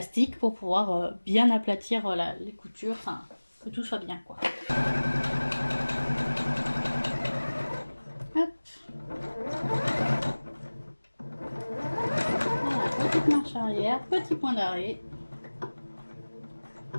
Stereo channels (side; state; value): both; inverted; correlation -1.00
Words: pour pouvoir bien aplatir les coutures, enfin, que tout soit bien, quoi. Hop. Voilà, petite marche arrière, petit point d'arrêt.